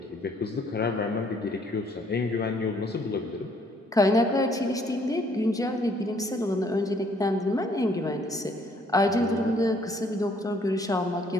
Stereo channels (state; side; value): normal; both; correlation 0.64